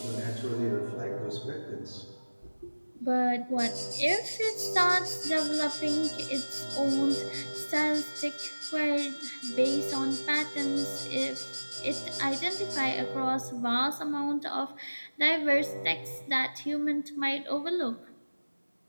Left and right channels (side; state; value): both; inverted; correlation -1.00